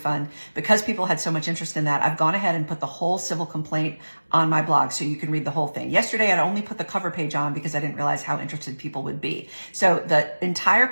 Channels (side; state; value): both; inverted; correlation -1.00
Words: Because people had so much interest in that, I've gone ahead and put the whole civil complaint on my blog so you can read the whole thing. Yesterday, I'd only put the cover page on because I didn't realize how interested people would be. So the entire